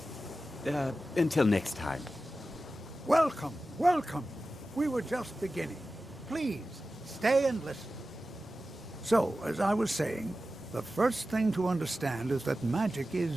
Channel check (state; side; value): normal; both; correlation 0.94